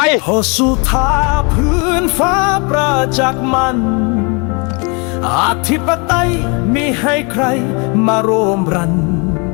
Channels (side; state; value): right; quieter; 32.1 dB